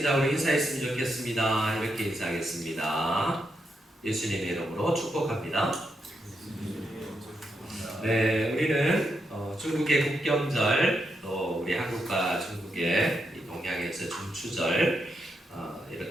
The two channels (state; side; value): normal; both; correlation 0.83